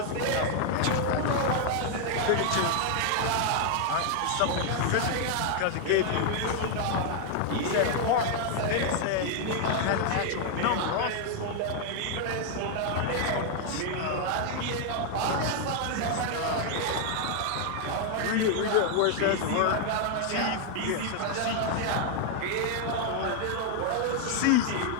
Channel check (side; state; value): both; different; correlation 0.00